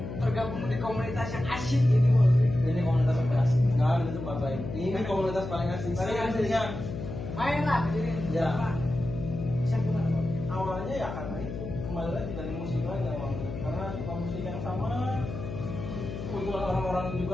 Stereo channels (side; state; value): left; noise; hum, 7 dB below the sound